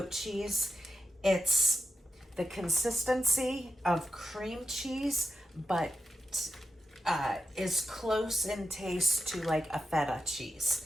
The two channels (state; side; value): normal; both; correlation 0.90